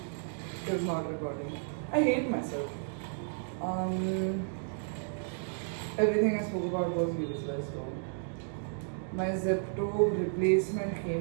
it's not recording. I hate myself. Everything I spoke about was useless though. My Zepto replacement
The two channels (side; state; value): left; silent; digital silence